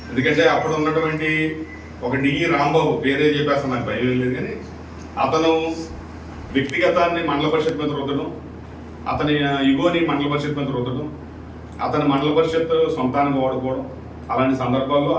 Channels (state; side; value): identical; both; correlation 1.00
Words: ఎందుకంటే అప్పుడు ఉన్నటువంటి ఒక డిఈ రాంబాబు, పేరే చెప్పేస్తాను, నాకు భయం లేదు, కానీ అతను వ్యక్తిగతాన్ని మండల పరిషత్ మీద రుద్దడం, అతని ఇగోని మండల పరిషత్ మీద రుద్దడం, అతని మండల పరిషత్ సొంతానికి వాడుకోవడం, అలాంటి సందర్భాల్లో